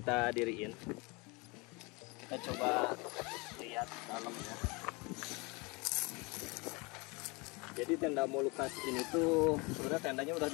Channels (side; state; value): right; quieter; 27.5 dB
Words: diriin. Kita coba lihat dalamnya. Jadi tenda Molucas ini tuh sebenarnya tendanya udah